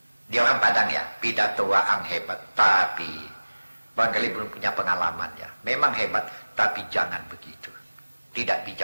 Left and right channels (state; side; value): inverted; both; correlation -1.00